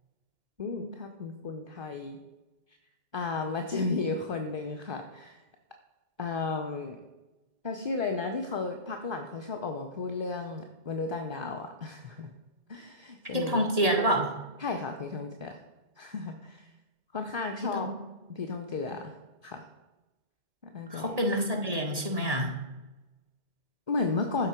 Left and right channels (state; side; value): late; left; 1.8 ms